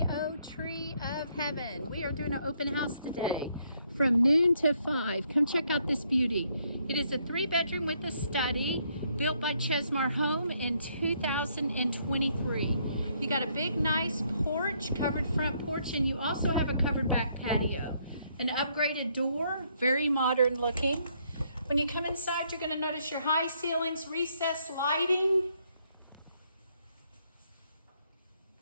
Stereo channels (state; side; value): inverted; both; correlation -0.70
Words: Tree of Heaven. We are doing an open house today from noon to 5. Come check out this beauty. It is a 3-bedroom with a study built by Chesmar Home in 2023. You got a big, nice porch, covered front porch, and you also have a covered back patio. An upgraded door, very modern looking. When you come inside, you're going to notice your high ceilings, recessed lighting.